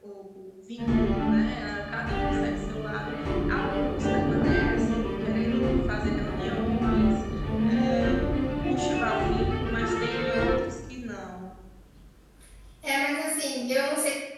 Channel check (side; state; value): both; identical; correlation 1.00